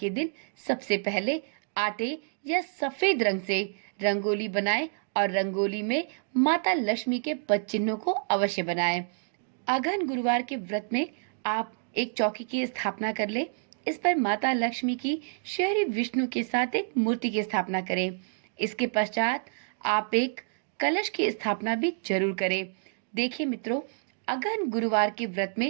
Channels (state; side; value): silent; left; digital silence